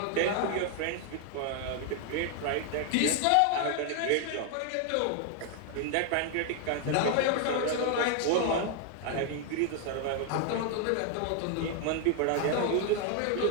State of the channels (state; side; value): different; both; correlation 0.00